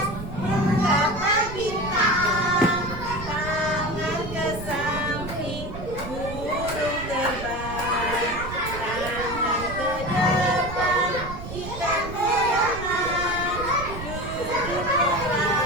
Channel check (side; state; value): right; noise; rumble, 9 dB below the sound